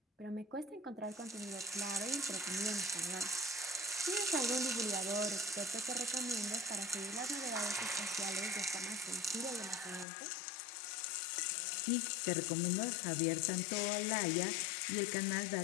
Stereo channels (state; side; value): drops out; right; at 10.1 s